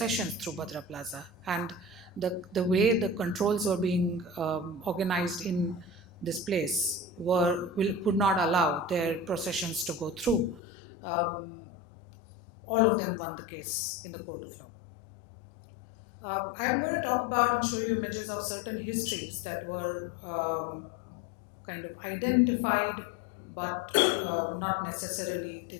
through Bhadra Plaza, and the way the controls were being organized in this place would not allow their processions to go through. All of them won the case in the court of law. I'm going to talk about and show you images of certain histories that were kind of identified, but not necessarily, they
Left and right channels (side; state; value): right; drops out; at 10.6 s